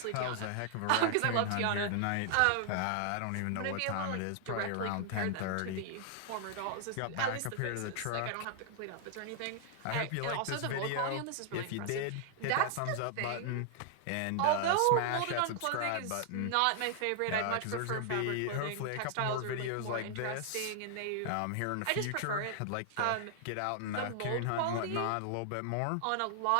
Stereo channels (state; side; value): different; both; correlation 0.00